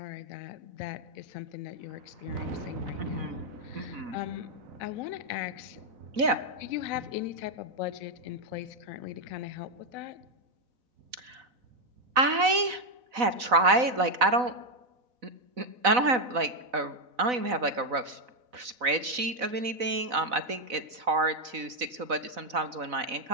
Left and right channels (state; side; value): late; left; 4.0 ms